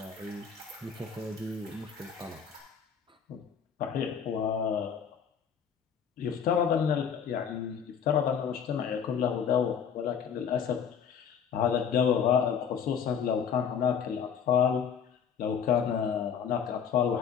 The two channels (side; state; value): right; quieter; 7.5 dB